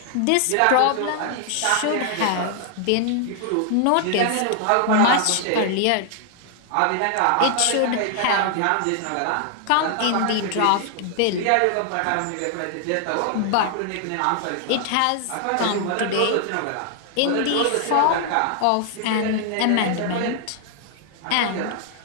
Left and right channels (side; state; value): both; different; correlation 0.00